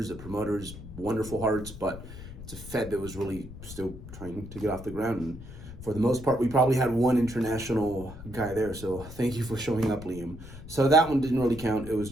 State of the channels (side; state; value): left; noise; rumble, 13 dB below the sound